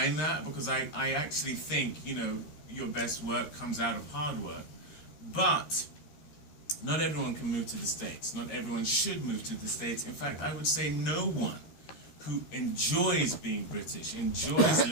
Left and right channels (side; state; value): right; late; 13 ms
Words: that, because I actually think, you know, your best work comes out of hard work. But not everyone can move to the States. Not everyone should move to the States. In fact, I would say no one who enjoys being British, enjoys